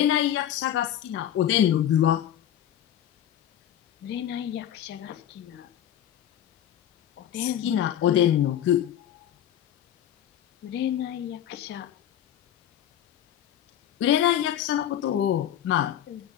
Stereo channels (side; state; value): right; quieter; 10.9 dB